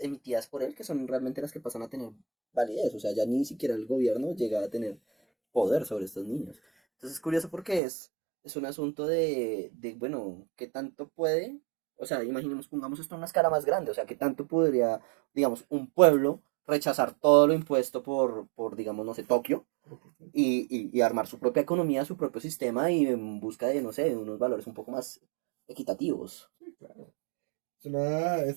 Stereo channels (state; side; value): drops out; left; at 7.8 s